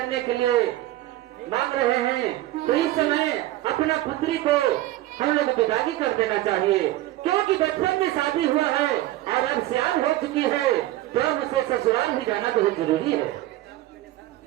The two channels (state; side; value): quieter; left; 15.6 dB